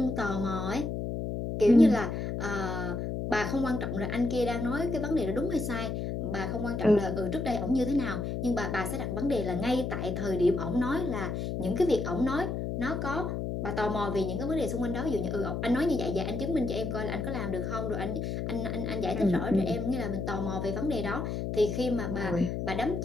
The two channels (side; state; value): left; noise; hum, 2 dB below the sound